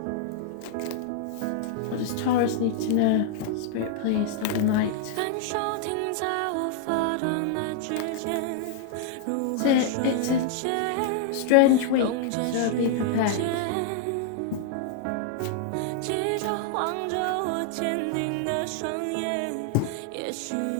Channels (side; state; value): both; different; correlation -0.01